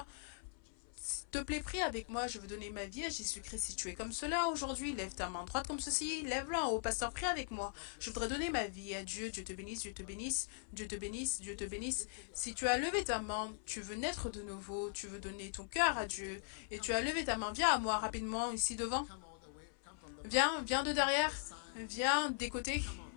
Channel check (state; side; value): silent; right; 51 dB below the other